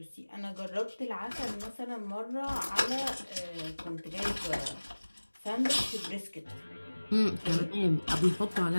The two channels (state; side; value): inverted; both; correlation -1.00